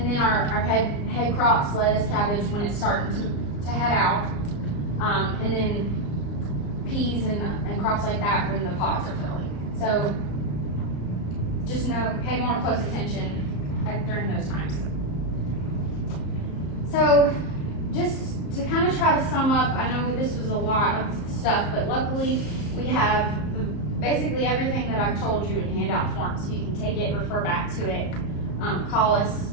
then our head crops, lettuce, cabbage, when it's starting to head out. And then peas and crops like that when the pods are filling. So just pay more close attention during those times. So just to kind of try to sum up, I know this was a lot of stuff, but luckily we have basically everything that I've told you in handout form, so you can take it, refer back to it, call us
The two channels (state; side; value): late; right; 34 ms